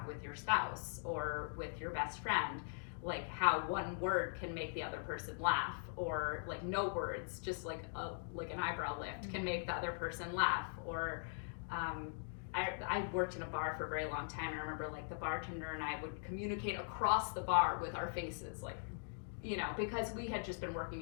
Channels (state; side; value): silent; right; digital silence